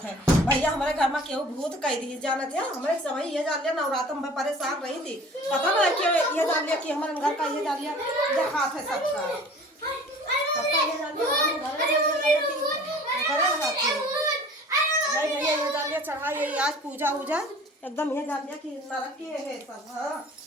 है भैया हमारे घर में केहू भूत कह दी जाना था हमारे समय ये जान लिया नवरात्र में परेशान रही थी पता ना कि ये जान लिया कि हमारे घर का ये जान लिया जखात है सबका ये जान लिया भैया ये जान लिया चढ़ा ये आज पूजा उजा एकदम ये जान लिया कि नरक के है सब। हाँ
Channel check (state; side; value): normal; both; correlation 0.46